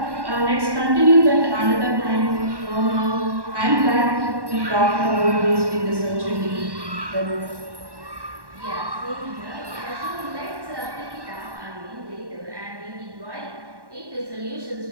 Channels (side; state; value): left; late; 1.1 ms